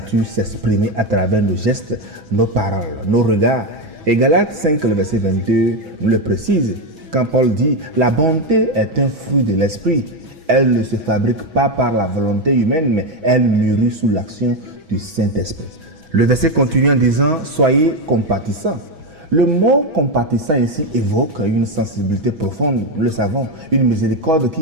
s'exprimer à travers nos gestes, nos paroles, nos regards. Et Galates 5, le verset 22 nous le précise. Quand Paul dit « La bonté est un fruit de l'esprit », elle ne se fabrique pas par la volonté humaine, mais elle mûrit sous l'action du Saint-Esprit. Le verset continue en disant « Soyez compatissants ». Le mot compatissant ici évoque une sensibilité profonde, nous le savons, une miséricorde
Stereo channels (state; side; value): late; left; 6.2 ms